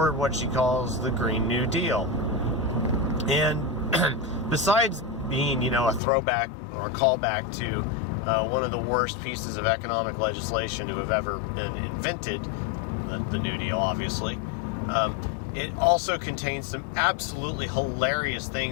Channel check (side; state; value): right; drops out; at 6.0 s